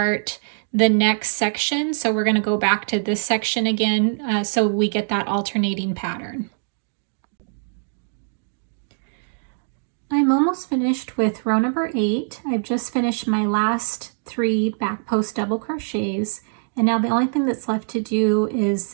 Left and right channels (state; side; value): silent; left; digital silence